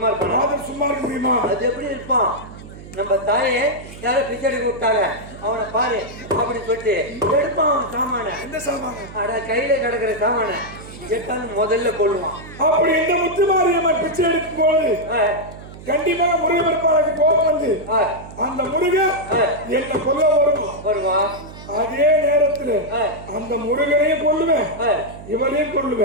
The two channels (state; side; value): noise; right; hum, 16 dB below the sound